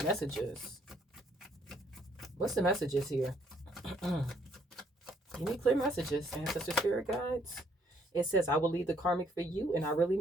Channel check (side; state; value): both; normal; correlation 0.67